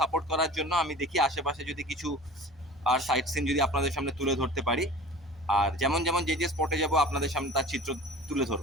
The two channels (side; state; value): both; normal; correlation 0.41